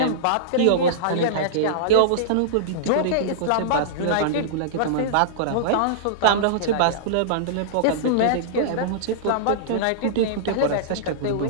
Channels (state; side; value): different; both; correlation -0.03